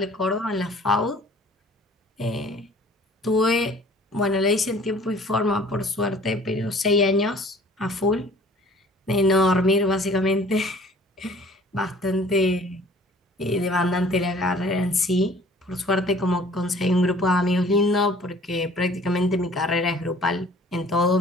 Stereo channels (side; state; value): both; normal; correlation 0.52